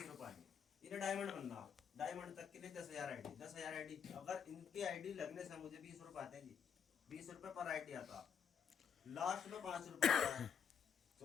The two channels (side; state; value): right; quieter; 7.5 dB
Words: रुपए आएंगे। इन्हें डायमंड बनना, डायमंड तक के लिए 10,000 आईडी, 10,000 आईडी। अगर इनकी आईडी लगने से मुझे 20 रुपए आते हैं जी, 20 रुपए पर आईडी आता। लास्ट में 5 रुपए आता है